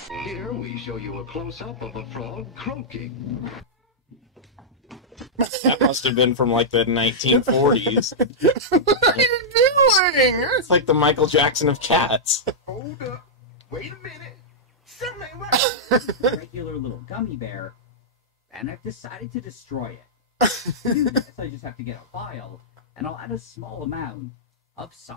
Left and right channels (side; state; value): both; normal; correlation -0.10